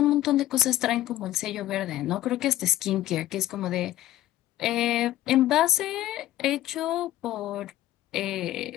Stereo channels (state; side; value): quieter; right; 14.2 dB